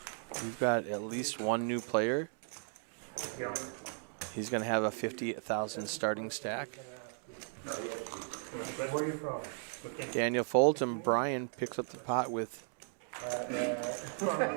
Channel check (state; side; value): silent; left; 54 dB below the other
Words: We've got at least one new player. He's going to have a 50,000 starting stack. Where are you from? Daniel folds and Brian picks up the pot with